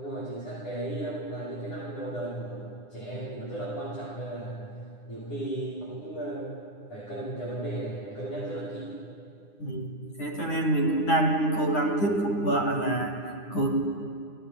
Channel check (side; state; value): right; late; 9.8 ms